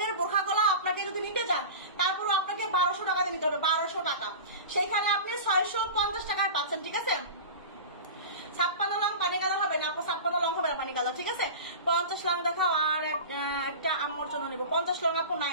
দিতে হবে 1200 টাকা, সেখানে আপনি 650 টাকায় পাচ্ছেন। ঠিক আছে, 56 লং পানি কালার হবে না আপু, 56 লং হবে না পানি কালার। ঠিক আছে, 50 লং দেখাও, আর একটা আম্মুর জন্য নিবো। 50 লং আপু নাই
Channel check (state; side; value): inverted; both; correlation -0.31